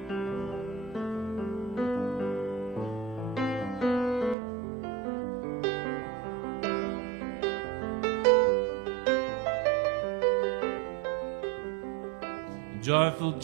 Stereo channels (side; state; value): left; drops out; at 4.4 s